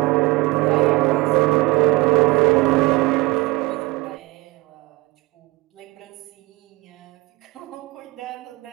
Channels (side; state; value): left; quieter; 22.0 dB